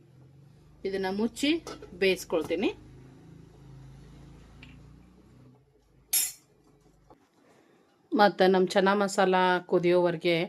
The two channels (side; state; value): both; identical; correlation 1.00